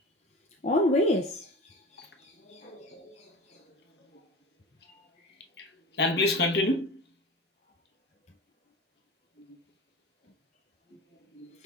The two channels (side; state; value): both; normal; correlation 0.33